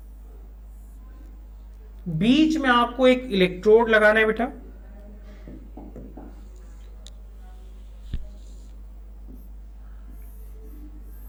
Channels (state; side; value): identical; both; correlation 1.00